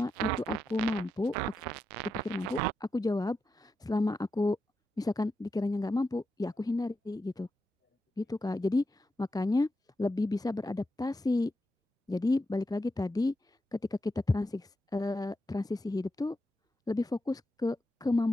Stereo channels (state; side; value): normal; both; correlation 0.87